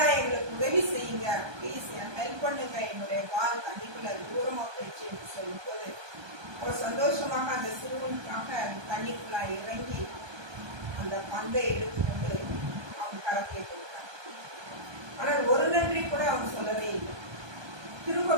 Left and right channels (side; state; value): left; late; 1.2 ms